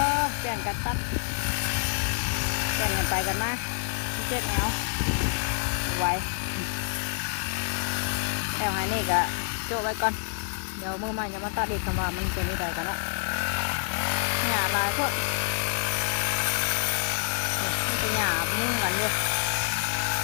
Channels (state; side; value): silent; right; digital silence